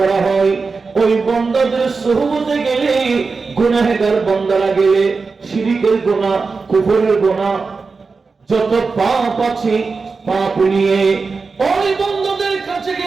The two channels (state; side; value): quieter; left; 4.5 dB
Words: হয়, ওই বান্দাদের সুহবতে গেলে, গুনাহগার বান্দারা গেলে, শিরকের গুনাহ, কুফরের গুনাহ, যত পাপ আছে পাপ নিয়ে ওই বান্দাদের কাছে